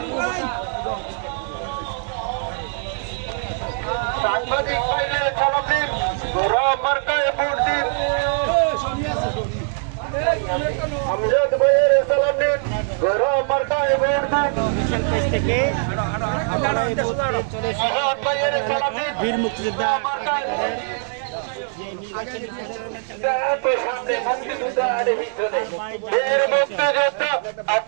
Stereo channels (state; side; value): silent; left; 64 dB below the other